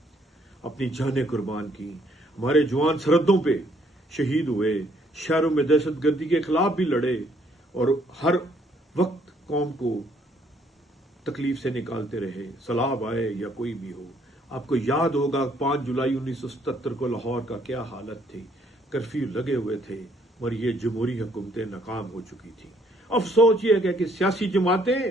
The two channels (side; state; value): both; normal; correlation 0.66